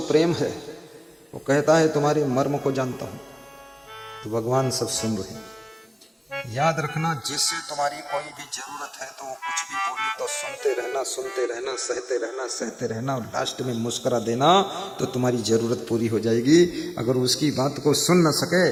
प्रेम है। वो कहता है तुम्हारे मर्म को जानता हूं। तो भगवान सब सुन रहे हैं। याद रखना, जिससे तुम्हारी कोई भी जरूरत है तो वो कुछ भी बोले तो सुनते रहना, सुनते रहना, सहते रहना, सहते रहना, और लास्ट में मुस्कुरा देना तो तुम्हारी जरूरत पूरी हो जाएगी। अगर उसकी बात को सुन न सके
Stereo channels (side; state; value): both; identical; correlation 1.00